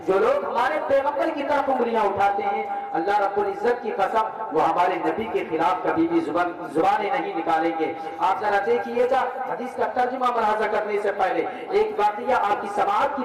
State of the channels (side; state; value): both; identical; correlation 1.00